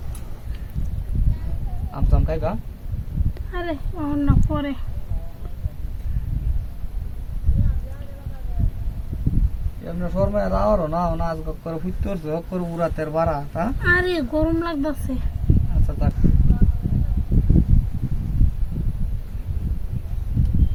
আমসাম খাইবা আরে অন্য পরে এমনি শর্মা রাওয়ারও না না আজ করে ফুটতে হচ্ছে হক করে উড়াতের বাড়া হ্যাঁ আরে গরম লাগতেছে আচ্ছা থাক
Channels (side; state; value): both; identical; correlation 1.00